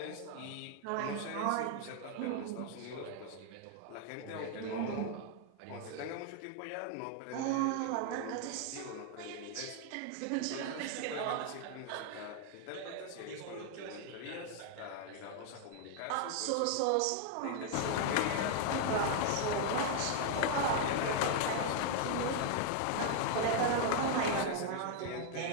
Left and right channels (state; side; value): different; both; correlation 0.00